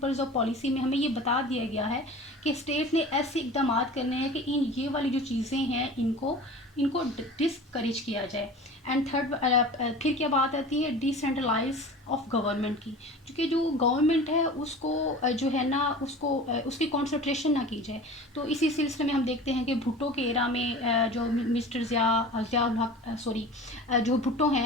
آف پالیسی میں ہمیں یہ بتا دیا گیا ہے کہ اسٹیٹ نے ایسے اقدامات کرنے ہیں کہ یہ والی جو چیزیں ہیں ان کو ڈسکریج کیا جائے. اینڈ تھرڈ پھر کیا بات آتی ہے ڈیسینٹرلائز آف گورنمنٹ کی, کیونکہ جو گورنمنٹ ہے اس کو جو ہے نا اس کی کانسنٹریشن نہ کی جائے. تو اسی سلسلے میں ہم دیکھتے ہیں کہ بھٹو کے ایرا میں جو مسٹر ضیاء الحق جو بھٹو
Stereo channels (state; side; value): normal; both; correlation 0.38